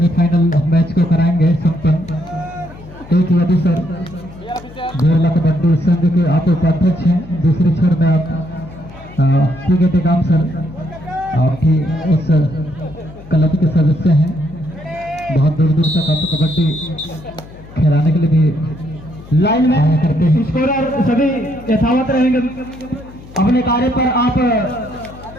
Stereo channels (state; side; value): noise; left; hum, 18 dB below the sound